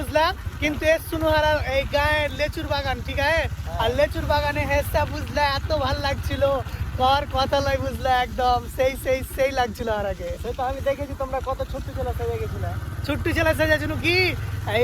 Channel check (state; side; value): identical; both; correlation 1.00